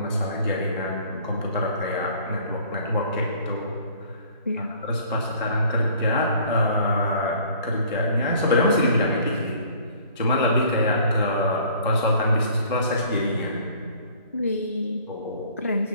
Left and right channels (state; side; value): inverted; both; correlation -0.53